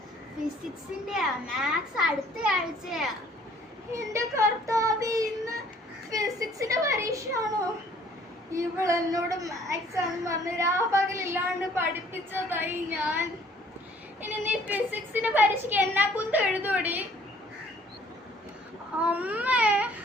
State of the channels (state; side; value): normal; both; correlation 0.58